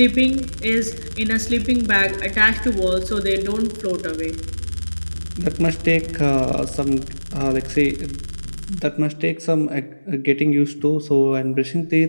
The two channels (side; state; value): both; inverted; correlation -1.00